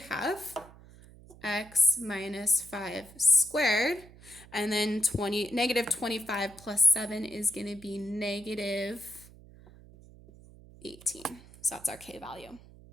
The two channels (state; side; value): noise; right; hum, 21 dB below the sound